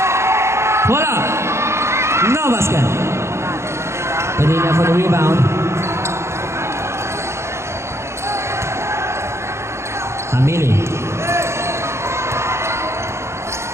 Wala. No basket. Padilla for the rebound. Hamili.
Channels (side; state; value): left; late; 0.13 ms